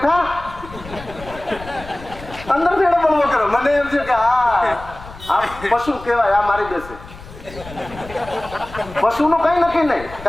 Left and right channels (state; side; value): noise; left; rumble, 16 dB below the sound